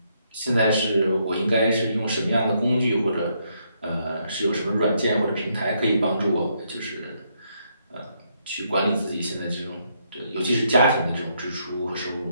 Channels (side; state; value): both; inverted; correlation -0.75